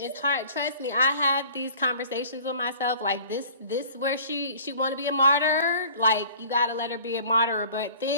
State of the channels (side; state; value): both; inverted; correlation -0.47